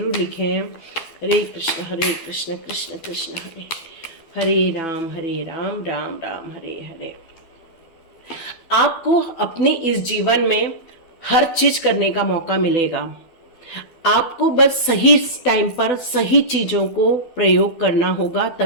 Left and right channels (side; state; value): right; late; 12 ms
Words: लिखें। हरे कृष्ण कृष्ण कृष्ण हरे, हरे राम राम राम हरे हरे। आपको अपने इस जीवन में हर चीज करने का मौका मिलेगा, आपको बस सही टाइम पर सही चीजों को प्रयोग करना होगा,